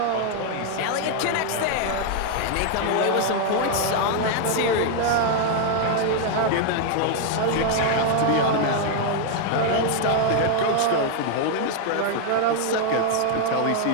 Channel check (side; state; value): both; different; correlation 0.00